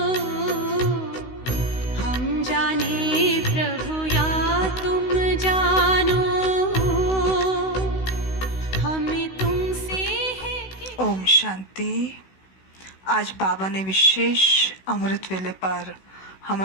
हम जाने प्रभु या तुम जानो, हमें तुमसे है कि। ओम शांति। आज बाबा ने विशेष अमृत वेले पर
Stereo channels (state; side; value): late; right; 16 ms